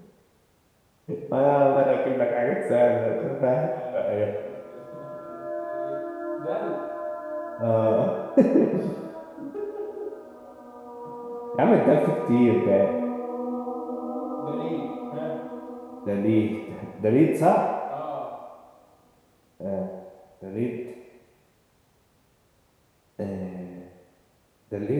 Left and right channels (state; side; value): identical; both; correlation 1.00